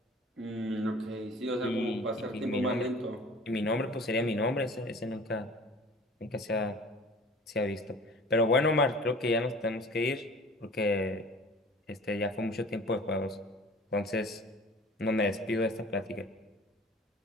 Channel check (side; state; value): both; normal; correlation 0.45